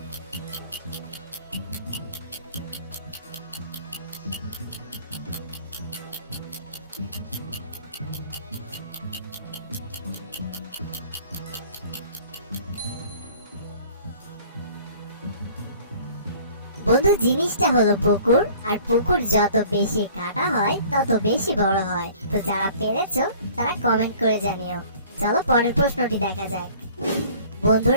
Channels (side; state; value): both; inverted; correlation -0.51